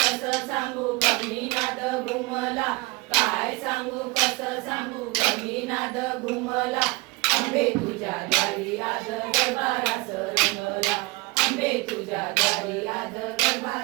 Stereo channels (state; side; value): quieter; left; 24.5 dB